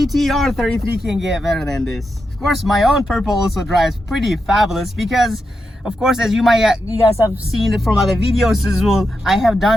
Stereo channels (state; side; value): normal; both; correlation 0.87